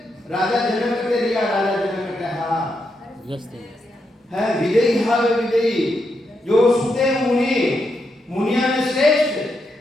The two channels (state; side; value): normal; both; correlation 0.82